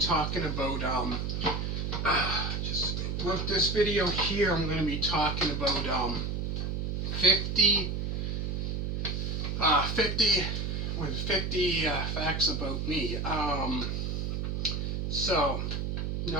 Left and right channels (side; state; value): right; noise; hum, 1 dB below the sound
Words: about, with this video here, I'm going to be talking about, 50 facts about me. So,